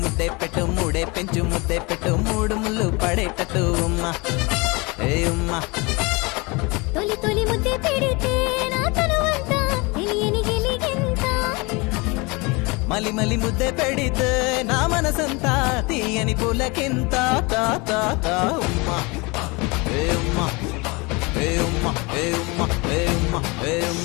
ముద్దే పెట్టు మూడే పెంచు ముద్దే పెట్టు మూడు ముళ్ళు పడేటట్టు ఉమ్మా ఏ ఉమ్మా తొలి తొలి ముద్దే పెడితే నా తనువంతా తెలియని గిలిగింత మలి మలి ముద్దే పెడితే నా మనసంతా తీయని పులకింత తా తా తా ఉమ్మా ఏ ఉమ్మా ఏ ఉమ్మా ఏ ఉమ్మా ఏ ఉమ్మా ఏ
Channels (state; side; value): quieter; right; 26.7 dB